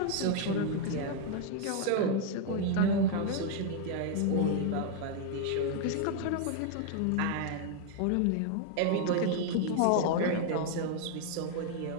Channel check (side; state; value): both; different; correlation 0.00